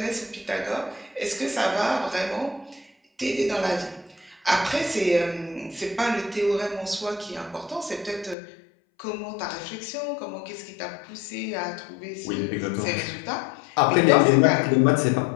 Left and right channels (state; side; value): drops out; right; at 8.3 s